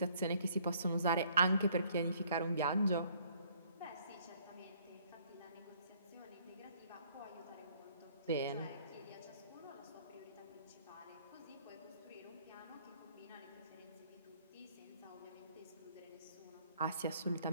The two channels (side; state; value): both; inverted; correlation -0.62